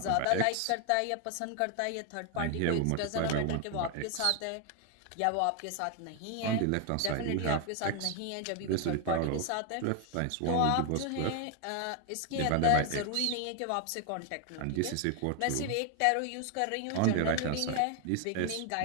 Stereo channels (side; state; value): both; different; correlation 0.01